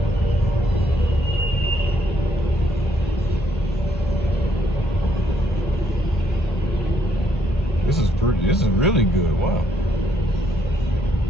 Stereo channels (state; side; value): normal; both; correlation 0.71